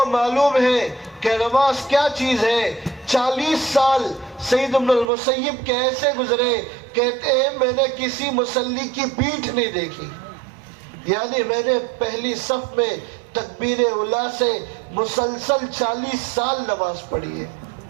معلوم ہے کہ نماز کیا چیز ہے. 40 سال سعید بن المسیب کے ایسے گزرے، کہتے ہیں میں نے کسی مصلی کی پیٹھ نہیں دیکھی، یعنی میں نے پہلی صف میں تکبیر اولیٰ سے مسلسل 40 سال نماز پڑھی ہے.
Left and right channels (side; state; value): left; drops out; at 5.1 s